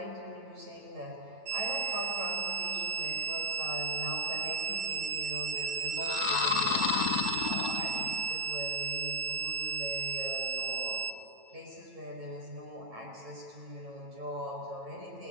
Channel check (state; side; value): late; left; 9.0 ms